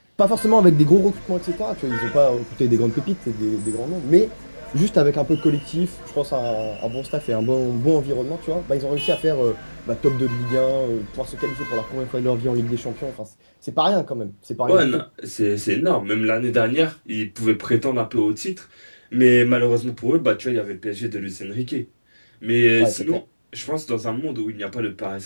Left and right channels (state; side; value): inverted; both; correlation -1.00